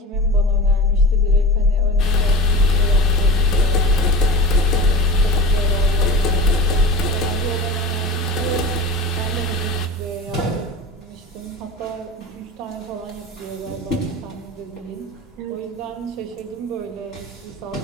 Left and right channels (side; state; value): both; normal; correlation 0.32